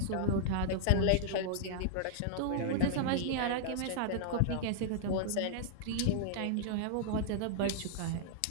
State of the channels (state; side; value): different; both; correlation -0.01